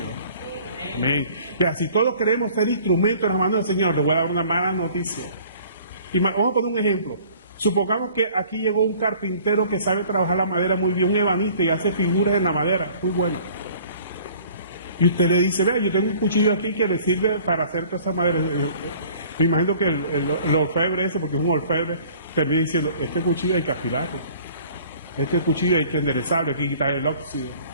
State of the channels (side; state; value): both; inverted; correlation -0.51